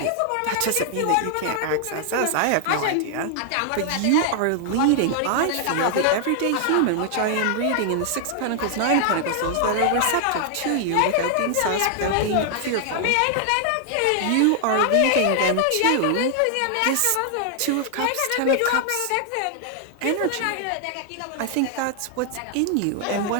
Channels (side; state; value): both; different; correlation 0.00